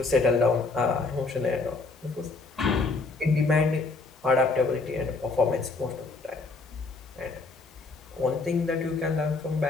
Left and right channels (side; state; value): right; quieter; 3.9 dB